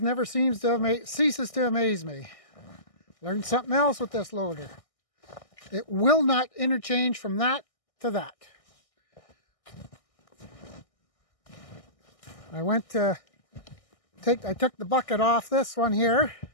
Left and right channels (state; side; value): late; right; 1.6 ms